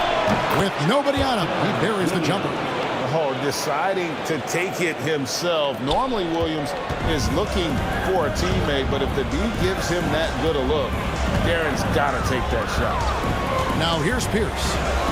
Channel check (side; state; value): both; identical; correlation 1.00